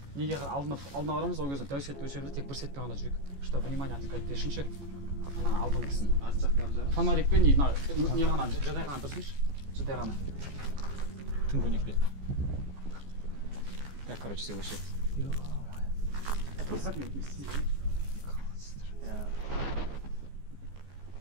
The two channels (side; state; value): left; late; 14 ms